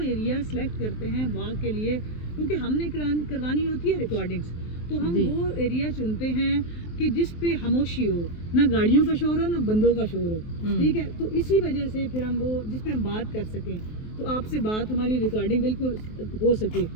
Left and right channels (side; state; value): right; late; 23 ms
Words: एरिया सिलेक्ट करते हैं वॉक के लिए, क्योंकि हमने करवानी होती है रिकॉर्डिंग्स, तो हम वो एरिया चुनते हैं कि जिस पे खामोशी हो, ना गाड़ियों का शोर हो ना बंदों का शोर हो, ठीक है। तो इसी वजह से फिर हम वो जिस पे हम बात कर सकें, तो आपसे बात हमारी रिकॉर्डिंग बिल्कुल हो सके,